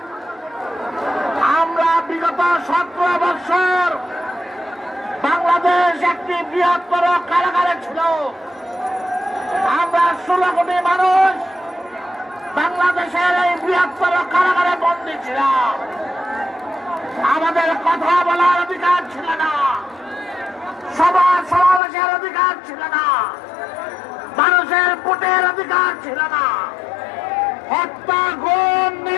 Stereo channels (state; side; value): drops out; right; at 21.8 s